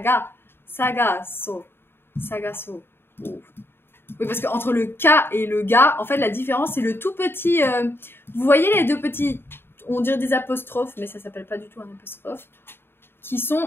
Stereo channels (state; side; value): late; right; 0.11 ms